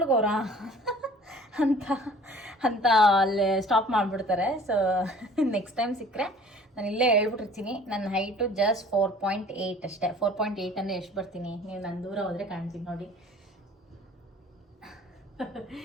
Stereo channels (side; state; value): both; normal; correlation 0.50